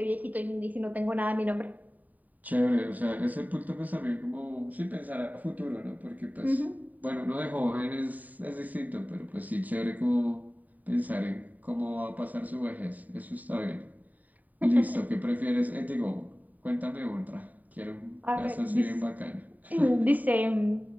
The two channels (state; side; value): late; left; 0.079 ms